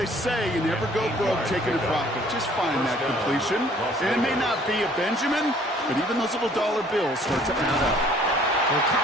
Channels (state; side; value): normal; both; correlation 0.57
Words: say you never go broke taking a profit. Just find that completion. And it may not be a Benjamin, but even those little dollar bills start to add up. They'll